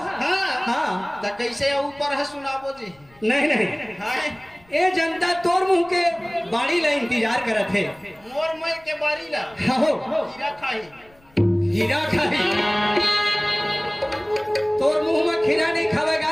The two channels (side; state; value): left; noise; rumble, 29 dB below the sound